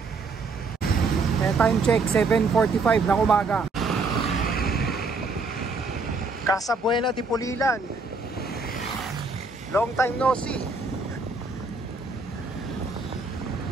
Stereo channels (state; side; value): quieter; left; 4.0 dB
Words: Time check 7:45 ng umaga. Casa Buena de Pulilan. Long time no see.